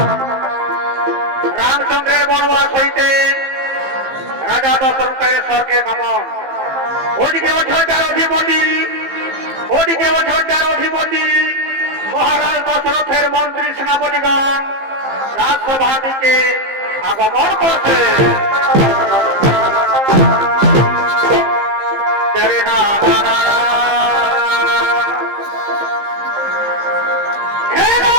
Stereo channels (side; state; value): left; late; 15 ms